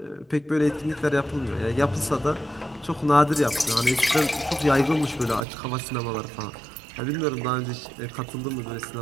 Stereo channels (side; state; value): left; drops out; at 5.5 s